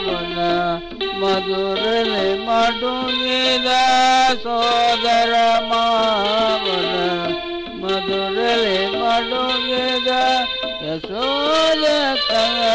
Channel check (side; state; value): both; identical; correlation 1.00